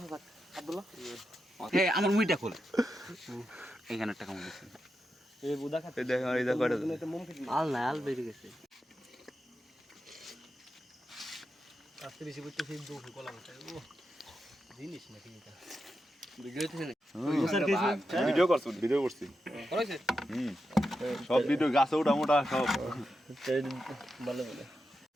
থাক আব্দুল্লাহ এই আমার মুইটা খোল এইখানে টাকা মনে আছে এই বুদা খাতে এই দেখ আর এই দেখ কয়টা আল না আল বেরিয়ে গেছে আজকে বেশি করতে সেই দুঃখ কলা মতো ও জিনিস না ঠিক আছে ভিডিও করছি ভিডিও করছি করেছে সব ভিডিও গাছে ওটা মোটা সব ভালো ভালো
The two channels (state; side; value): normal; both; correlation 0.88